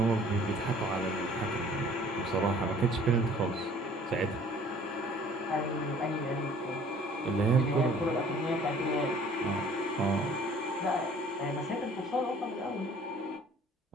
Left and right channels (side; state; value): both; normal; correlation 0.53